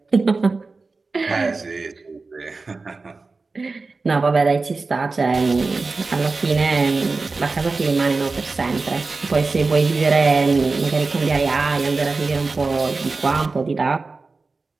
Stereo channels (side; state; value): left; quieter; 3.9 dB